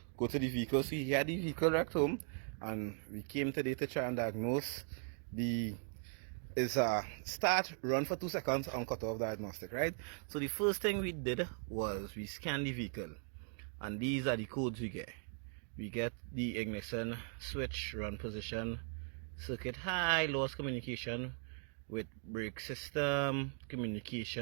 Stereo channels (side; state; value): left; silent; 52 dB below the other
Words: go to the vehicle. So he had the vehicle wrecked home, and we came today to try and diagnose the is start run for 2 seconds on cutoff diagnostic, right? So the first thing we did was we scanned the vehicle, and these are the codes we get. We get the ignition switch run position, circuit high, lost communication with brake system,